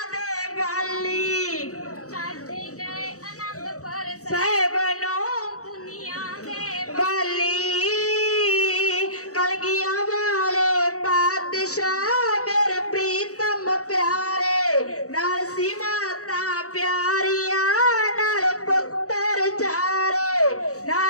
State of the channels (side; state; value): right; late; 0.65 ms